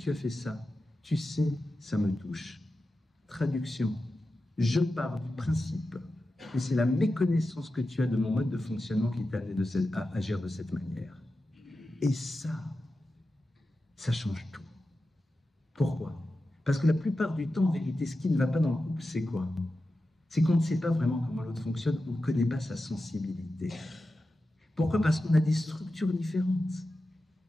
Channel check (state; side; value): normal; both; correlation 0.92